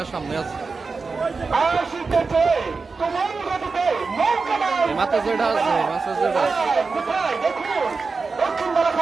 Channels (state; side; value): quieter; left; 4.4 dB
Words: সামনে আছে আসিতেছে তোমার গতিতে নৌকাবাইজ মাথা যেটা আছে মাথা যেটা আছে কোথায় দেখুন দক্ষিণ